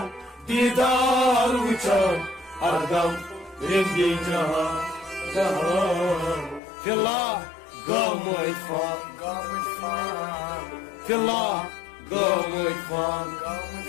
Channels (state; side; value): drops out; right; at 6.6 s